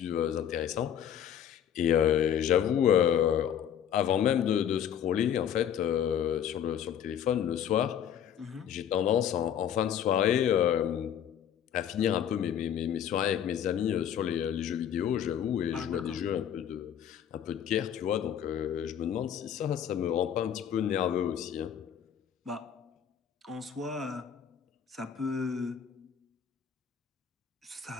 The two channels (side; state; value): right; quieter; 9.2 dB